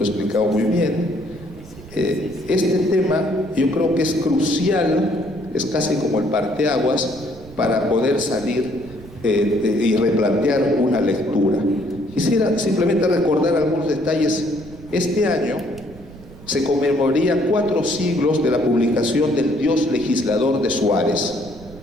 muy bien. Este tema yo creo que es crucial, es casi como el parteaguas para poder salir y replantear una lectura. Quisiera simplemente recordar algunos detalles. Este año se conmemoraría 4 siglos de la publicación del Dios legislador de Suárez.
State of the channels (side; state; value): right; noise; rumble, 18 dB below the sound